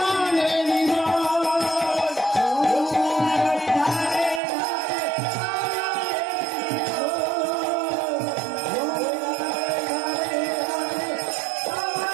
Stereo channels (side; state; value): left; drops out; at 4.4 s